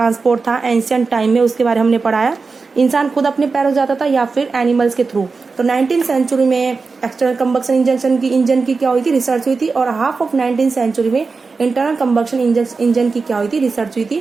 था एंशिएंट टाइम में, उसके बारे में हमने पढ़ाया। इंसान खुद अपने पैरों जाता था या फिर एनिमल्स के थ्रू। तो 19th सेंचुरी में एक्सटर्नल कंबक्शन इंजन की क्या हुई थी, रिसर्च हुई थी। और हाफ ऑफ 19th सेंचुरी में इंटरनल कंबक्शन इंजन की क्या हुई थी, रिसर्च हुई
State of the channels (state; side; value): quieter; left; 4.4 dB